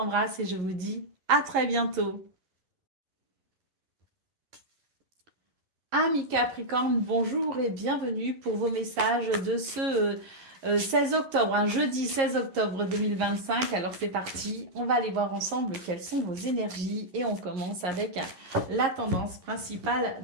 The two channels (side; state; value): left; late; 11 ms